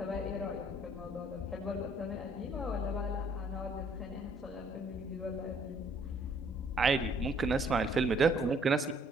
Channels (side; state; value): both; normal; correlation 0.63